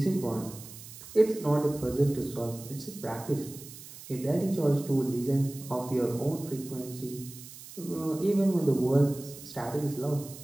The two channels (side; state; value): right; noise; hiss, 15 dB below the sound